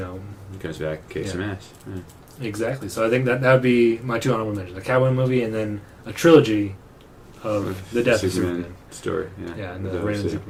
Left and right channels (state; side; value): identical; both; correlation 1.00